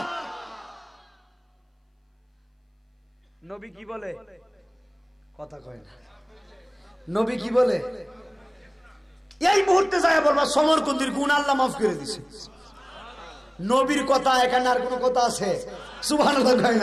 নবী কি বলে? কথা কয় না। নবী কি বলে? এই মুহূর্তে যায় বলবা সমরখন্দির গুনাহ আল্লাহ মাফ করে দিছে। নবীর কথা, এখানে আর কোন কথা আছে? সুবহানাল্লাহ কয়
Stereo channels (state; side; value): identical; both; correlation 1.00